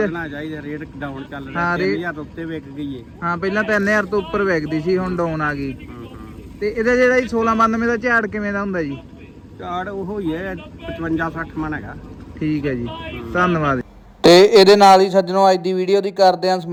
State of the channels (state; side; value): identical; both; correlation 1.00